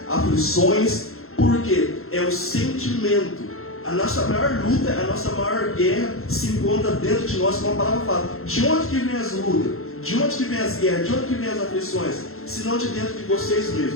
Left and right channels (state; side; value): late; right; 0.62 ms